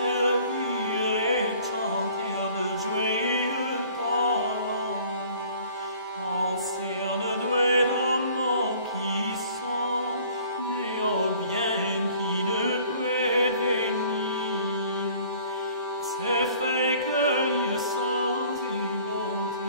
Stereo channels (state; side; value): inverted; both; correlation -0.53